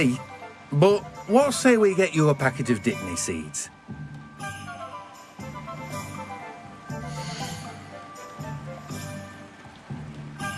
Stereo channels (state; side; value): identical; both; correlation 1.00